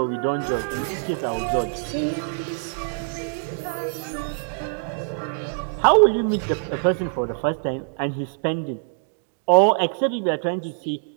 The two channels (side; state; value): left; silent; digital silence